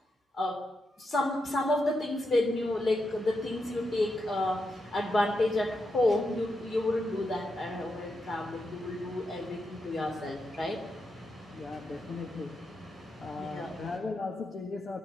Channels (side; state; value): both; normal; correlation 0.85